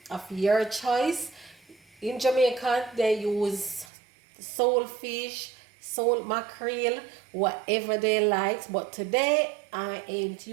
of your choice. In Jamaica, they use soul fish, soul mackerel, whatever they like. But today, I ain't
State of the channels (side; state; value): left; drops out; at 3.9 s